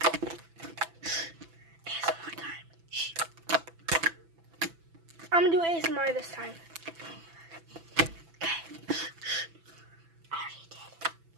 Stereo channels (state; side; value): late; left; 6.0 ms